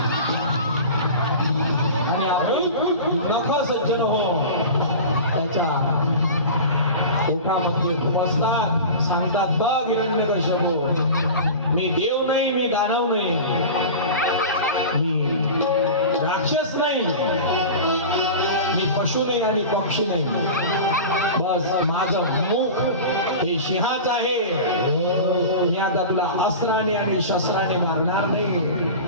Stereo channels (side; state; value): both; inverted; correlation -0.32